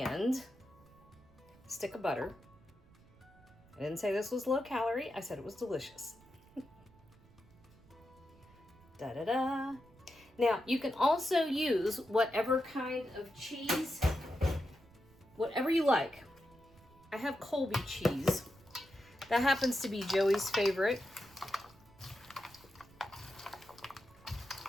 a stick of butter. I didn't say this was low calorie. I said it was delicious. Da-da-da. Now, you can also use whatever kind of cheese, whatever you like. I have Colby cheese. That happens to be Joey's favorite.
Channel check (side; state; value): right; noise; rumble, 26 dB below the sound